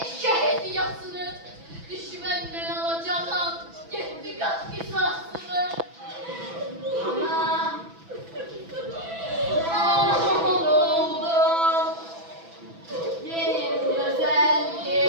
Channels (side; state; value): left; late; 6.0 ms